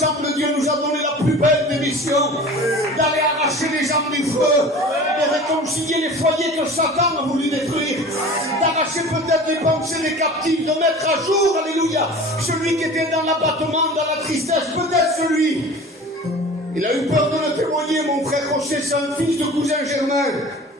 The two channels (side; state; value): both; normal; correlation 0.40